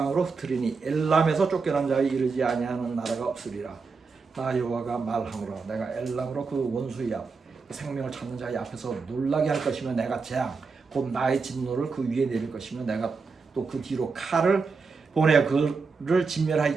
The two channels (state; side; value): quieter; left; 4.7 dB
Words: 흩으리니 엘람에서 쫓겨난 자에 이르지 아니하는 나라가 없으리라. 나 여호와가 말하노라 내가 엘람으로 그 원수의 앞 생명을 찾는 자의 앞에서 놀라게 할 것이며 내가 재앙 곧 나의 진노를 그 위에 내릴 것이며 내가 또 그 뒤로 칼을 보내 그를